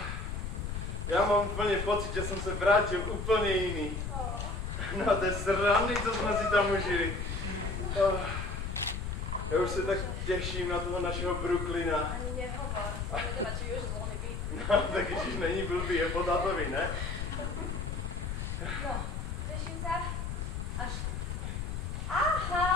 Já mám úplně pocit, že jsem se vrátil úplně jiný. No, to je srandy, co jsme si tam užili. Já už se tak těším na toho našeho Brooklyna. Ani nehovor, vedela, či už zvolný byt. No, tak ježiš, není blbý, je po tátovi, ne? No, teším sa. Až...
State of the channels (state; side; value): noise; left; rumble, 3 dB below the sound